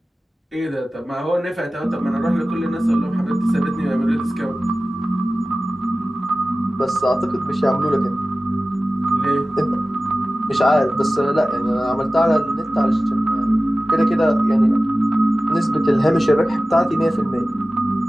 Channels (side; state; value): both; normal; correlation 0.96